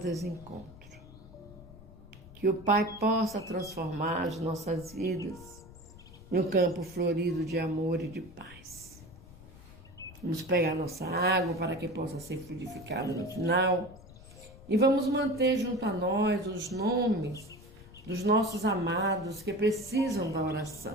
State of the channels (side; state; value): left; noise; rumble, 19 dB below the sound